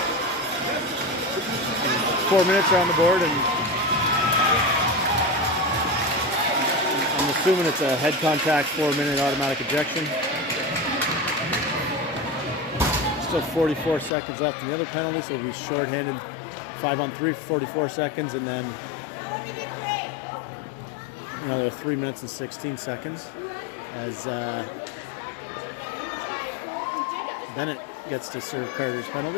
4 minutes are on the board, and I'm assuming it's a head contact 4-minute automatic ejection. Still 44 seconds left in the other penalty, so it'll be shorthanded 5-on-3 for 44 seconds, and then another 3 minutes and 16 seconds as Bennett gets to serve Carter's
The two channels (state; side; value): drops out; right; at 14.1 s